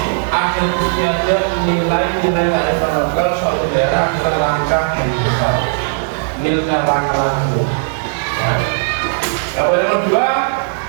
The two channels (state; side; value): silent; left; digital silence